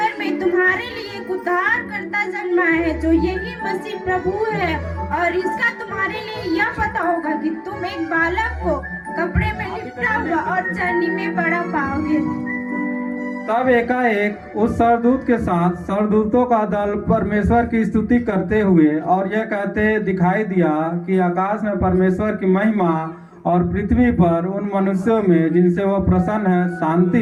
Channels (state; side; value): identical; both; correlation 1.00